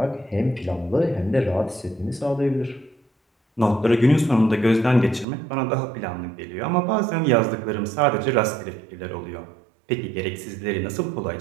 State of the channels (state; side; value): drops out; left; at 5.2 s